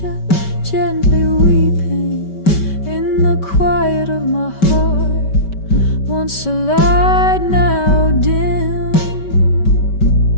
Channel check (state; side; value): late; right; 5.2 ms